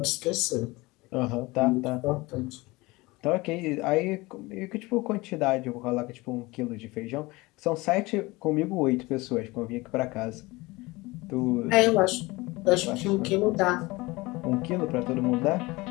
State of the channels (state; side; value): quieter; right; 22.3 dB